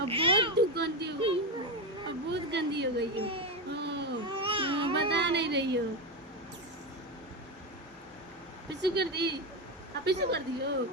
बहुत गंदी हो गई हो, अब बहुत गंदी हो गई हो। बता नहीं रही हो। पिच्चू कर दी, अब पिच्चू कर दियो,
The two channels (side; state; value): both; normal; correlation 0.14